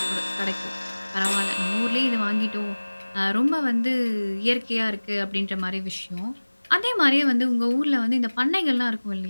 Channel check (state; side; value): inverted; both; correlation -1.00